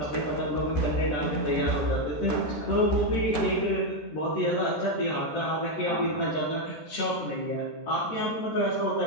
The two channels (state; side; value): late; right; 13 ms